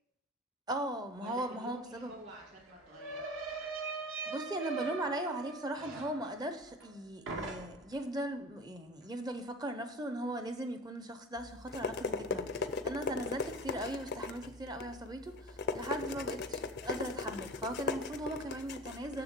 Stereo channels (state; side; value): normal; both; correlation 0.36